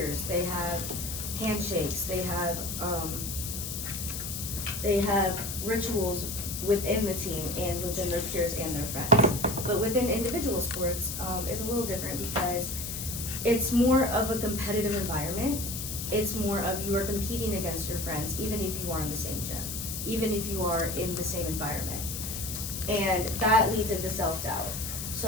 they have handshakes, they have rituals within the team and within their peers and their friends. But within individual sports, it's a little different, because it's more of a competitive environment. It's more of you are competing against your friends, even if you are in the same gym, even if you are in the same environment. And that leads into self-doubt.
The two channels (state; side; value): noise; left; hiss, 5 dB below the sound